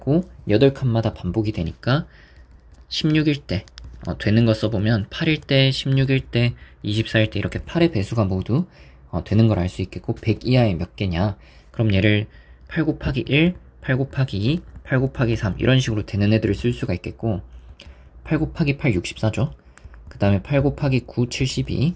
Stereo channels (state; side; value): identical; both; correlation 1.00